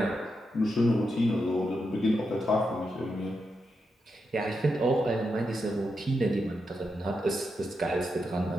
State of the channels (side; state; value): both; normal; correlation 0.85